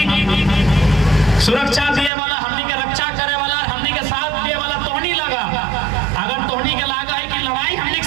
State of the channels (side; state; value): left; drops out; at 2.1 s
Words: सुरक्षा दिए वाला, हमनी के रक्षा करे वाला, हमनी के साथ दिए वाला तोहनी लगा। अगर तोहनी के लागा है कि लड़ाई हमनी